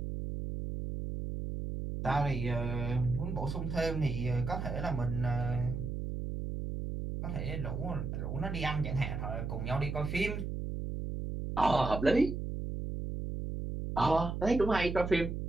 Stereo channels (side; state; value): right; noise; hum, 4 dB below the sound